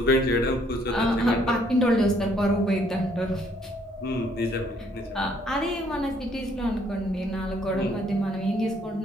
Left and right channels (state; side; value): normal; both; correlation 0.65